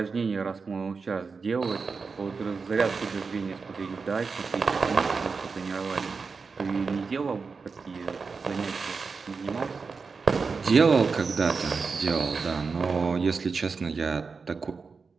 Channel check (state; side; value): quieter; left; 4.8 dB